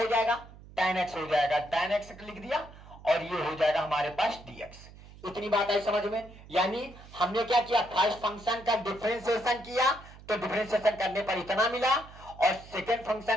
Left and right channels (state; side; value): noise; right; hum, 19 dB below the sound